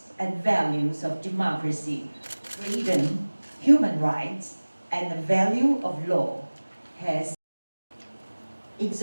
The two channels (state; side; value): inverted; both; correlation -1.00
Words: and values of democracy, freedom, human rights, and the value of law has